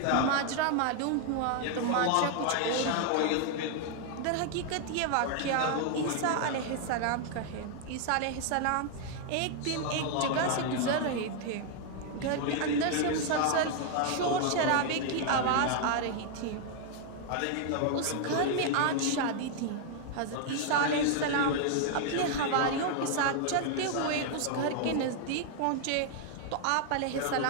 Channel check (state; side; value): different; both; correlation 0.00